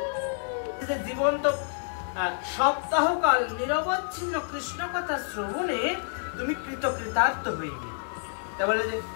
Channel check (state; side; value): silent; right; digital silence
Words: জীবন তো সপ্তাহকাল নিরবচ্ছিন্ন কৃষ্ণ কথা শ্রবণে তুমি কৃতকৃতার্থ হইবে। তা বলে